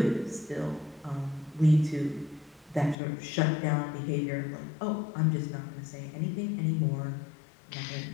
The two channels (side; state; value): right; drops out; at 3.0 s